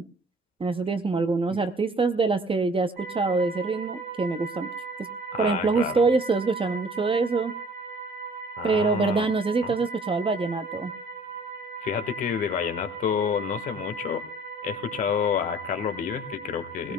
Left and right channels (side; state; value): both; normal; correlation 0.52